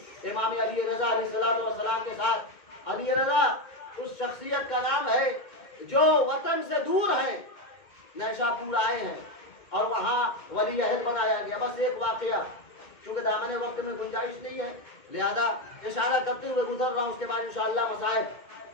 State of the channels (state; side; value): late; right; 2.2 ms